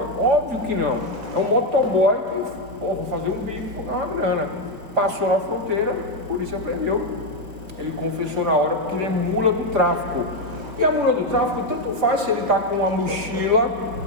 Óbvio que não. É um motoboy que, vou fazer um bico, vou ganhar uma grana. Passou na fronteira, a polícia prendeu. Ele confessou na hora porque ele é mula do tráfico. E a mula do tráfico tanto faz se ele está com uma mochila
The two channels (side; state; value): left; late; 5.1 ms